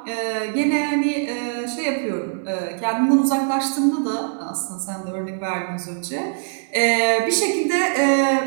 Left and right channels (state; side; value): silent; left; 64 dB below the other